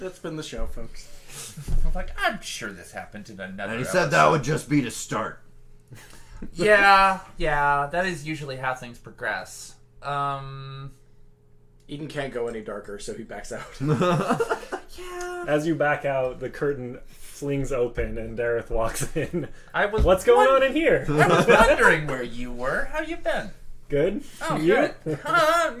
that's been the show, folks. I'm like, I'm sure this happened in another And he said that would just be to start. Yeah, that is usually how things progress. Eden can't go any darker, so he backs out. Yeah. As you back out, the curtain flings open and Dareth walks in. I was What's going on in here? I was wondering where you were. How you been? Good? Oh, You? good. I'm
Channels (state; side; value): identical; both; correlation 1.00